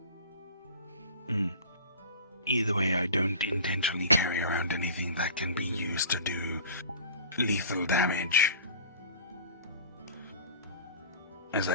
Either way, I don't intentionally carry around anything that can be used to do lethal damage. As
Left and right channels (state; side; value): inverted; both; correlation -0.41